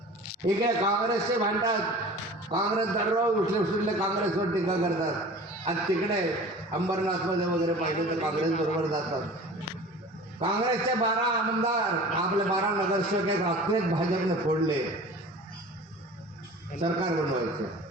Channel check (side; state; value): both; normal; correlation 0.41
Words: इकडे काँग्रेसचे भांडतात. काँग्रेस दररोज उठले काँग्रेसवर टीका करतात आणि तिकडे अंबरनाथमध्ये वगैरे पाहिजे तर काँग्रेस बरोबर जातात. काँग्रेसचे 12 आमदार आपले 12 नगरसेवक एक रात्रीच भाजपने फोडले सरकार बनवायचं.